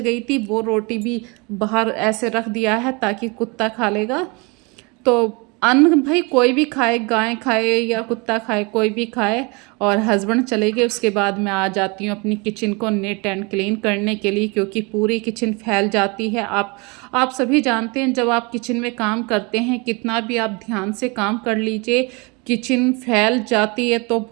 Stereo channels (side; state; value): left; quieter; 28.9 dB